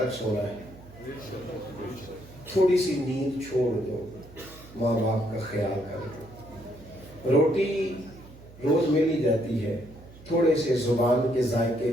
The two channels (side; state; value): right; noise; hum, 20 dB below the sound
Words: سونا ہے, تھوڑی سی نیند چھوڑ دو, ماں باپ کا خیال کر دو. روٹی روز مل ہی جاتی ہے, تھوڑے سے زبان کے ذائقے